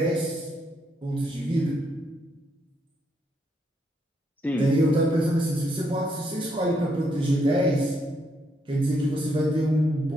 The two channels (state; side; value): normal; both; correlation 0.76